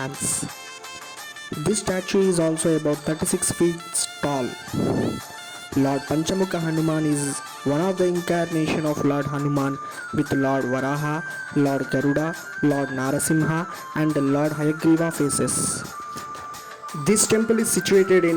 This statue is also about 36 feet tall. Lord Panchamukha Hanuman is one of the incarnation of Lord Hanuman with Lord Varaha, Lord Garuda, Lord Narasimha and Lord Hayagriva faces. This temple is situated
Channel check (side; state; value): both; identical; correlation 1.00